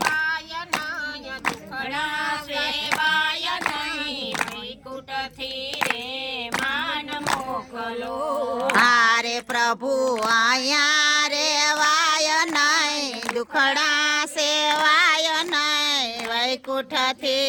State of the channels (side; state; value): both; identical; correlation 1.00